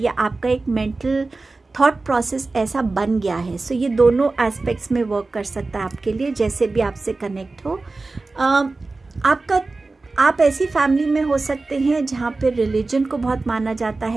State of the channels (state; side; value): quieter; left; 3.5 dB